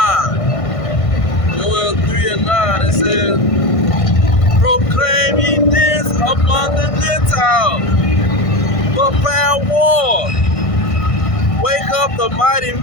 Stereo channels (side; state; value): right; late; 1.5 ms